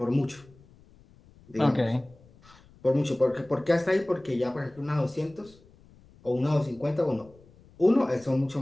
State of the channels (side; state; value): left; noise; rumble, 26 dB below the sound